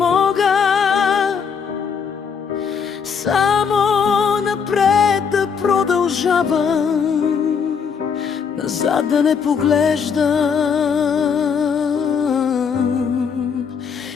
само напред да продължавам, назад да не поглеждам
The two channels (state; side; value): quieter; right; 6.5 dB